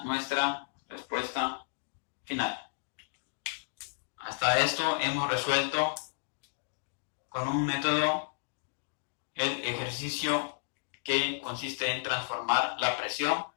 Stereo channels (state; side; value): silent; right; digital silence